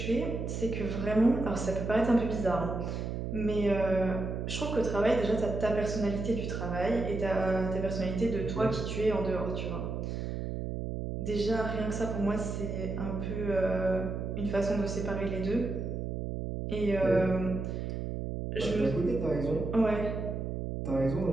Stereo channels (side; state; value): right; noise; hum, 4 dB below the sound